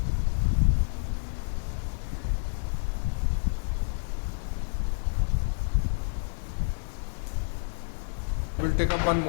We'll take up one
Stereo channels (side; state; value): right; silent; digital silence